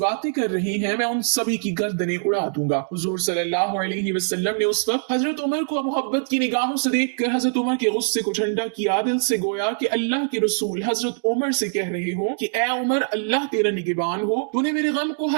कर रही हैं, मैं उन सभी की गर्दनें उड़ा दूंगा। हुजूर सल्लल्लाहु अलैहि वसल्लम ने उस वक्त हजरत उमर को मोहब्बत की निगाहों से देखकर हजरत उमर के गुस्से को ठंडा किया। दिल से गोया कि अल्लाह के रसूल हजरत उमर से कह रहे हो कि ए उमर, अल्लाह तेरा निगहबान हो, तूने मेरे गम को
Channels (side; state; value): left; silent; digital silence